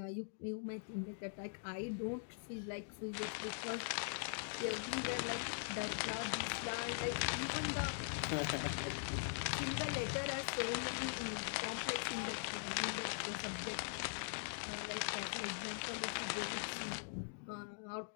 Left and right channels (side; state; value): right; silent; digital silence